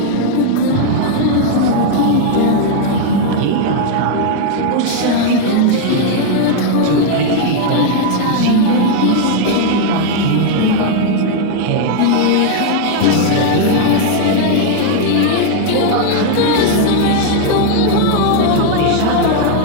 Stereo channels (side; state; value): both; different; correlation 0.00